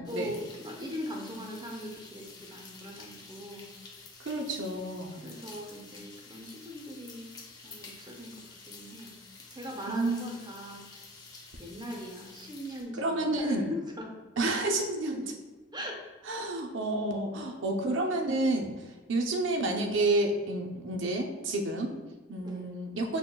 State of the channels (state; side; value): normal; both; correlation 0.33